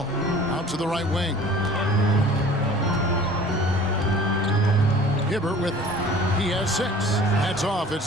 Out to the right wing. Hibbert with it. He has 6. That's off. It's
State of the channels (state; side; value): normal; both; correlation 0.47